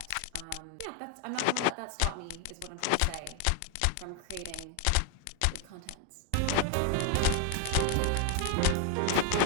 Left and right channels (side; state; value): both; different; correlation 0.01